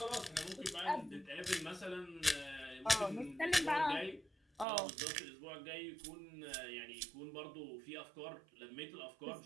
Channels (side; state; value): left; drops out; at 4.7 s